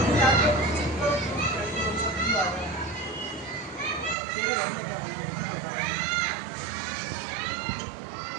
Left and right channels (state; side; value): drops out; left; at 4.2 s